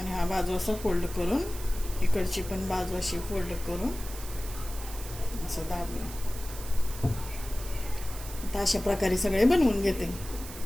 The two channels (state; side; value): noise; right; hiss, 13 dB below the sound